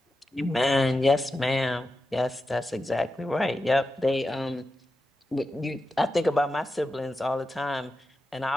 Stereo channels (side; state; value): both; normal; correlation 0.91